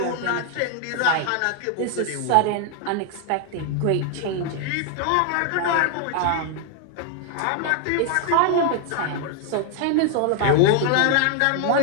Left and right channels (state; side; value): different; both; correlation 0.00